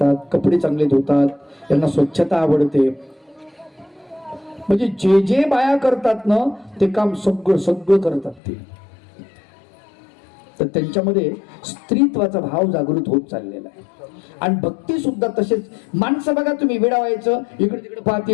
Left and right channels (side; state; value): right; drops out; at 8.4 s